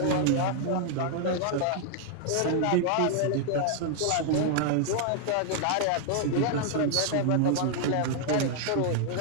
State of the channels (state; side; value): different; both; correlation 0.00